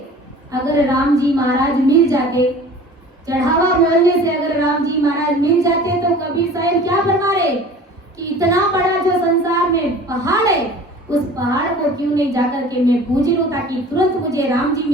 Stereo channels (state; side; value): normal; both; correlation 0.44